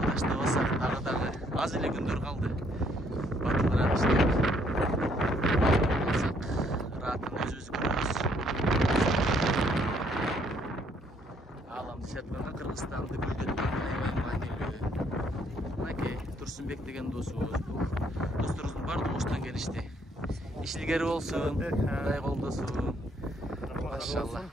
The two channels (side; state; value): both; normal; correlation 0.67